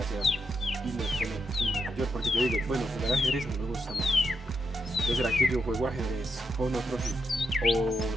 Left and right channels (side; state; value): both; normal; correlation 0.83